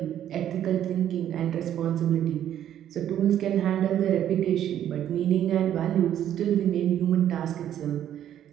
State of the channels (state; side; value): quieter; left; 10.8 dB